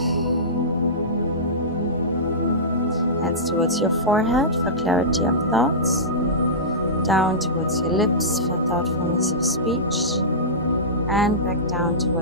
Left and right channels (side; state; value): both; normal; correlation -0.18